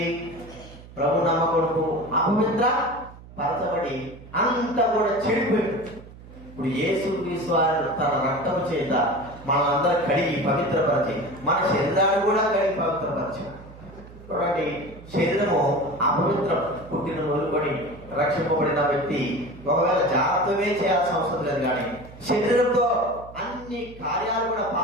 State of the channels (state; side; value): noise; right; hum, 18 dB below the sound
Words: ప్రభు నమ్మకొడుకు అపవిత్ర పరచబడి అంతా కూడా చెడిపోయింది. ఇప్పుడు యేసుక్రీస్తు వారు తన రక్తం చేత మనందరూ కడిగి పవిత్రపరిచి మన శరీరాన్ని కూడా కడిగి పవిత్రపరిచాడు. చూడండి, శరీరము అపవిత్ర పుట్టిన మొదలుకొని రక్షింపబడిన వ్యక్తి ఒకవేళ జాగ్రత్తమే చేయాల్సిన అవసరం లేదు. కానీ శరీరంతో అన్ని కార్యాలు కూడా